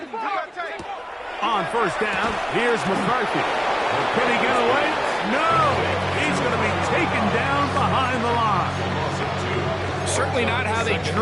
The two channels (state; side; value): identical; both; correlation 1.00